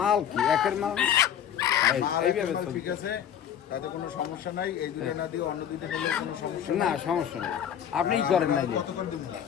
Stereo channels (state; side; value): quieter; right; 9.4 dB